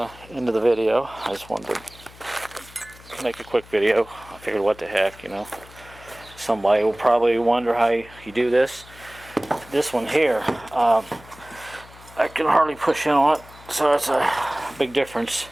end of the video. I just wanted to make a quick video. I figured, what the heck, you know. Somebody will probably wonder how you do this. This one here, I can hardly push in on it, so that's a big difference.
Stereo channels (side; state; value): left; noise; hum, 22 dB below the sound